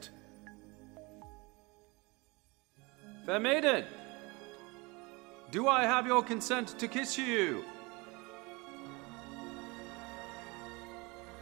Fair maiden, do I have your consent to kiss you?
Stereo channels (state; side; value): quieter; left; 26.0 dB